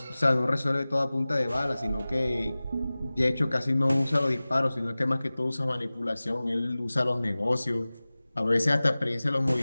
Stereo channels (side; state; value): both; inverted; correlation -0.98